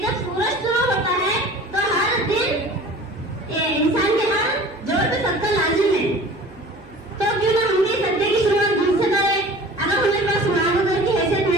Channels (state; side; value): noise; right; hum, 22 dB below the sound